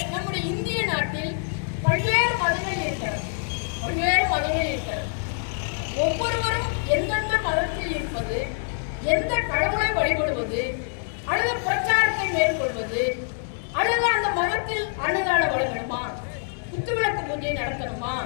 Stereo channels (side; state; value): right; silent; digital silence